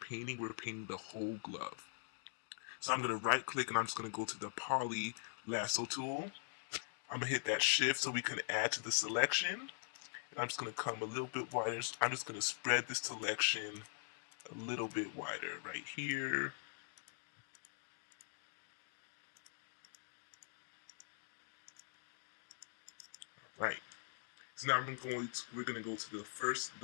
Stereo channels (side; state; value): right; silent; digital silence